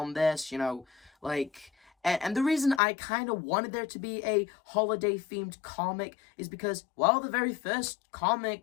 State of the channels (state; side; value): drops out; right; at 2.8 s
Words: this, And the reason I kind of wanted there to be a holiday-themed comic is because, well, the very first